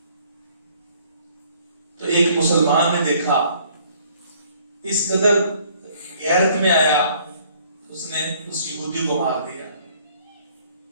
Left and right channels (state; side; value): inverted; both; correlation -0.60